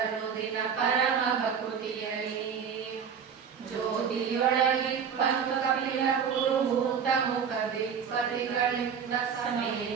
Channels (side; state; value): left; quieter; 7.1 dB